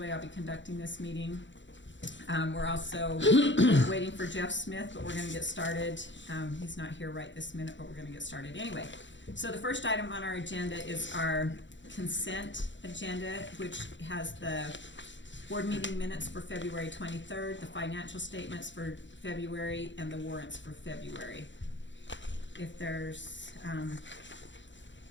I'll be conducting this meeting. We're also waiting for Jeff Smith, but we're going to get started. He's not here right this minute, but we're going to get started anyway. So the first item on our agenda is our consent agenda, which has the board meeting minutes for February 23rd, the financial statements for February, and the warrants for February. If there's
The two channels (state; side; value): late; right; 0.54 ms